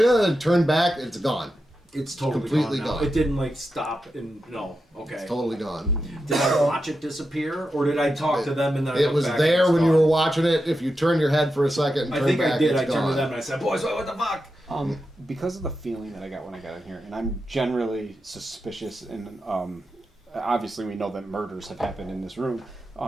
back. It's gone. It's totally completely gone. Now. gone. It didn't like stop and no. Okay. It's totally gone. Did I watch it disappear, or did I talk to them and then I It looked was back there and when it's you were gone? watching it. If you turn your head for a second and I turn think back, I did. it's I turned gone. to them and I said, "Boys, what the fuck?" Because of the feeling that I got when I got in here, and I'm generally suspicious, and obviously we know that murders have happened in this room.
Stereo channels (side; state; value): both; normal; correlation 0.89